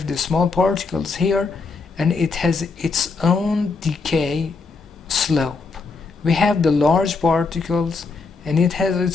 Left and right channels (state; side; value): quieter; right; 4.3 dB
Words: the small particles here, and it has its own decay slope. We have the large particles, and it has